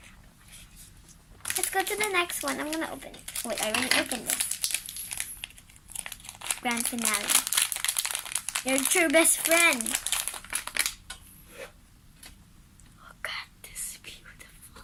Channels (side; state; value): both; identical; correlation 1.00